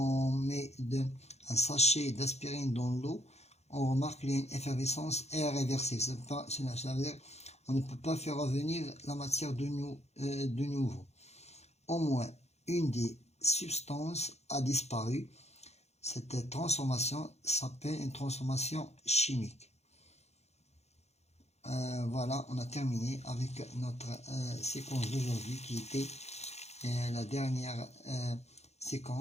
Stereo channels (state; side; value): late; right; 0.31 ms